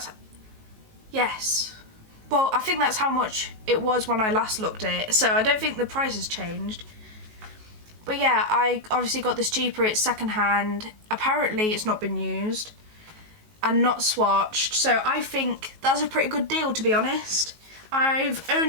yes. Well, I think that's how much it was when I last looked at it, so I don't think the price has changed. But yeah, I obviously got this cheaper, it's second hand. Apparently it's not been used and not swatched, so I think that's a pretty good deal, to be honest. I've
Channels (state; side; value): late; left; 19 ms